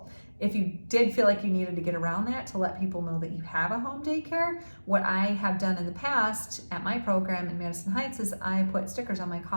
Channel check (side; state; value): both; inverted; correlation -1.00